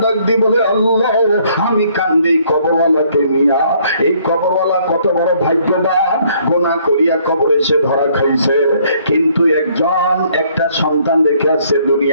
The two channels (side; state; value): both; inverted; correlation -0.64